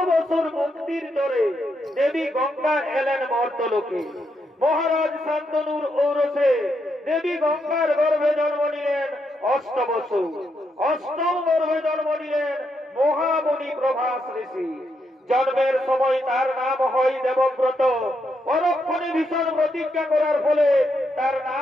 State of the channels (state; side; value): normal; both; correlation 0.80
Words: বছর মুক্তির দরে দেবী গঙ্গা এলেন মর্তলোকে। মহারাজ শান্তনুর ঔরসে দেবী গঙ্গার গর্ভে জন্ম নিলেন 8 বছর। 8ম গর্ভে জন্ম নিলেন মহামুনি প্রভাস ঋষি। জন্মের সময় তার নাম হয় দেবব্রত, পরক্ষণে ভীষণ প্রতিজ্ঞা করার ফলে তার